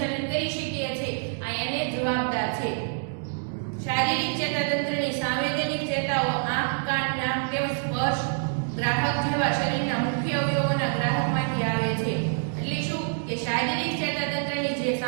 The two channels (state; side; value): silent; left; digital silence